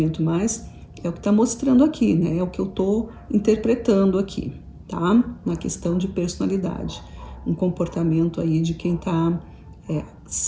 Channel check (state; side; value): identical; both; correlation 1.00